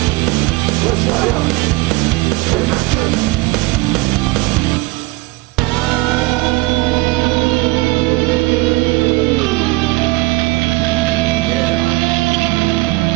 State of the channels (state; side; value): quieter; left; 21.6 dB